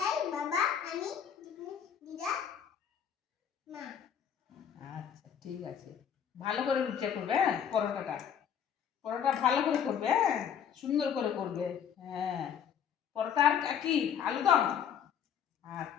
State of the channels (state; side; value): quieter; right; 8.4 dB